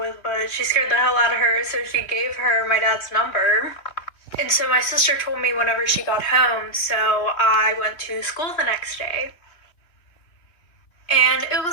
but she scared the hell out of her, so she gave her my dad's number. And so my sister told me whenever she got home, so I went to school the next day. And it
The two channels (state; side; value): late; right; 3.2 ms